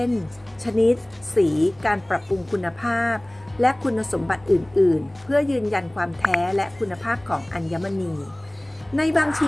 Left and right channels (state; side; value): noise; left; hum, 29 dB below the sound